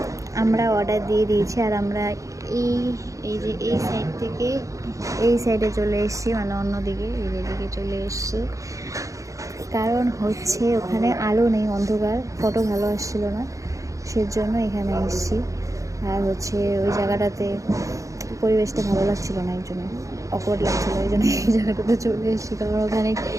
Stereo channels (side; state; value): left; late; 0.16 ms